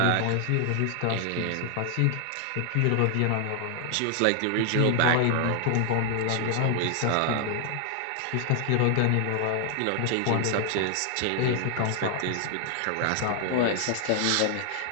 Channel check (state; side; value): different; both; correlation 0.00